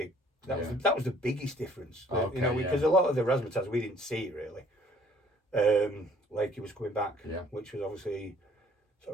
That was the biggest difference. Because a lot of the razzmatazz we didn't see really. Lakey was coming back, which was obviously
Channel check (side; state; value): both; normal; correlation 0.58